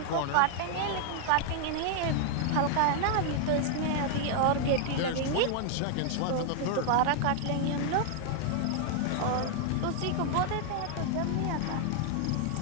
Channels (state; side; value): different; both; correlation 0.00